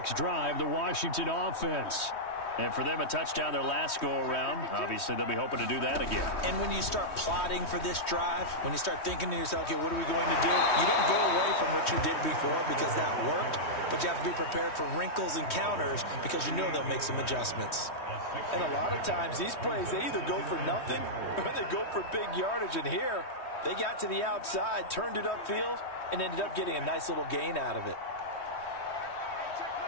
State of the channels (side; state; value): right; late; 3.2 ms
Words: drive, the Washington offense. And for them, a touchdown their last go-around. Obviously, they'll be hoping to do that again. And when you start plotting for this drive, when you start thinking to yourself, okay, what are we going to do? You don't go away from what you did before because that worked, but you have to be prepared for wrinkles and counters because you know they'll make some adjustments. And a lot of times, these plays, they either go for nothing or they go for big yardage. And here, they got to the outside, turned it upfield, and ended up getting a nice little gain out of it.